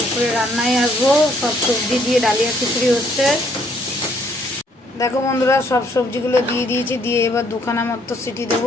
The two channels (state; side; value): normal; both; correlation 0.67